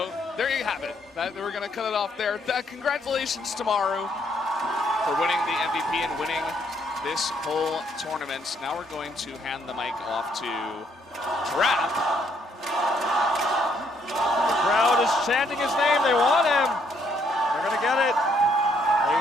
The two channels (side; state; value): both; normal; correlation 0.70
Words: there you have it. We're going to cut it off there. Congratulations to Maru for winning the MVP and winning this whole tournament. Now we're going to hand the mic off to Trap. The crowd is chanting his name. They want him. They're going to get it. He